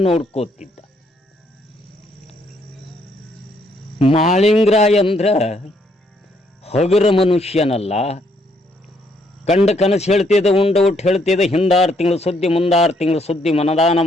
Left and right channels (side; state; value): both; normal; correlation 0.71